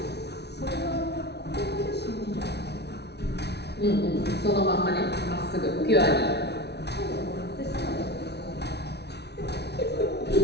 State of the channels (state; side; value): late; right; 0.49 ms